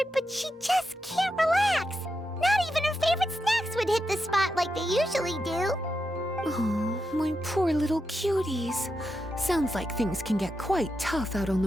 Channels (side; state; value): both; normal; correlation 0.86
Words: but she just can't relax. Not even her favorite snacks would hit the spot like they usually do. Oh, my poor little cuties. Sounds like things can get quite tough out on